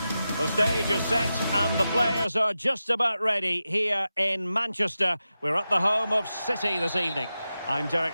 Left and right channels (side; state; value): both; inverted; correlation -0.92